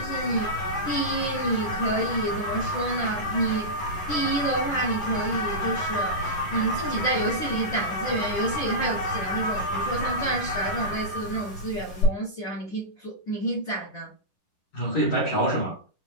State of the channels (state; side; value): late; right; 11 ms